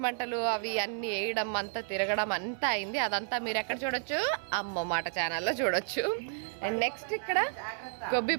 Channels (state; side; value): silent; left; 55 dB below the other